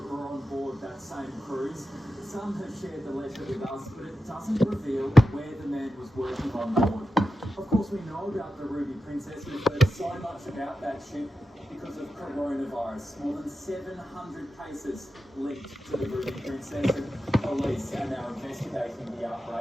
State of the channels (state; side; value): normal; both; correlation 0.91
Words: were on board that same cruise. Some have shared the letter with us, but it doesn't reveal where the man was working on board. Of course, we know about the Ruby Princess. We've heard so much about that ship because of coronavirus. More than 700 cases linked to the Ruby Princess, and police are now investigating the